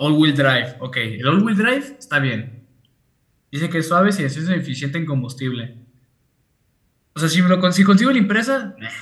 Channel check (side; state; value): both; identical; correlation 1.00